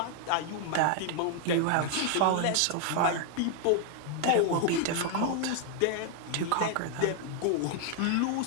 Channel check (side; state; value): both; different; correlation 0.00